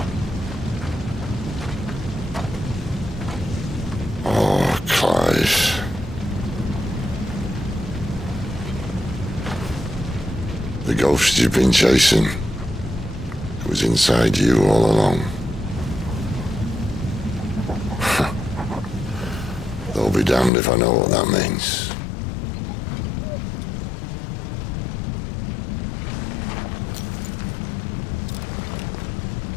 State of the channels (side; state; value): right; drops out; at 20.5 s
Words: Clive. The ghost you've been chasing, it was inside you all along. They'll be damned if I know what that means.